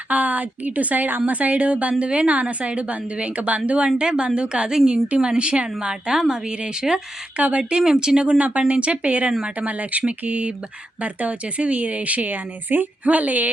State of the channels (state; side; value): normal; both; correlation 0.86